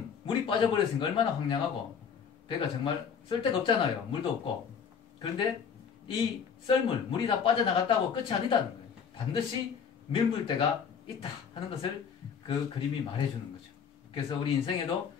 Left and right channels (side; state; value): right; quieter; 6.8 dB